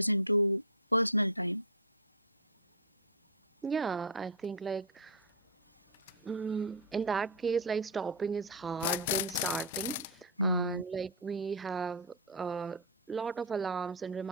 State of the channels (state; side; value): normal; both; correlation -0.10